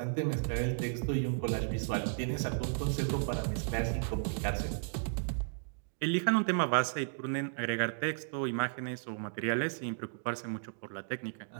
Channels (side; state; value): left; silent; digital silence